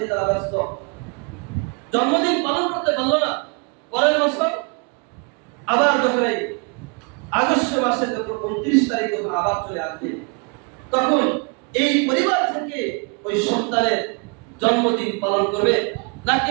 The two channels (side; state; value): left; quieter; 34.7 dB